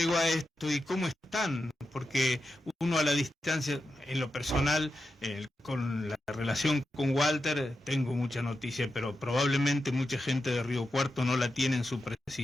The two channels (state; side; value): normal; both; correlation 0.89